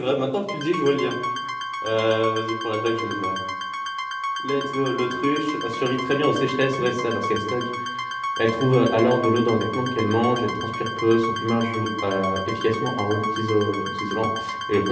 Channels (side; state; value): both; identical; correlation 1.00